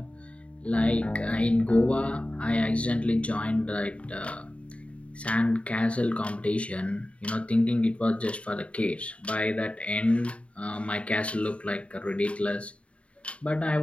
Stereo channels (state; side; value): late; right; 0.062 ms